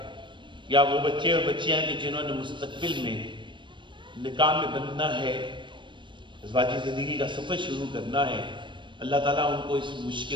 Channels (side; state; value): left; late; 0.23 ms